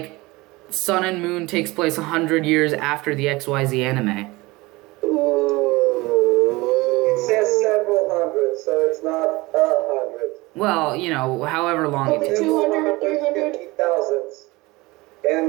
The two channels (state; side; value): quieter; left; 22.0 dB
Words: Sun and Moon takes place 100 years after the XYZ anime. It says several hundred, so it's not 100. Well, you know, however long it takes. 200, 300.